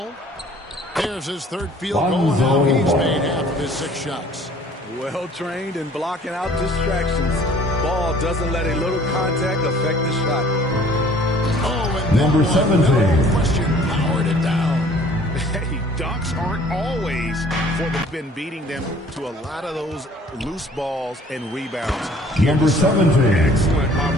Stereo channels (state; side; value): normal; both; correlation 0.53